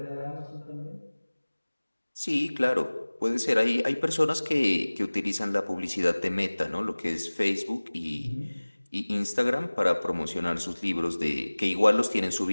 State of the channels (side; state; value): both; inverted; correlation -1.00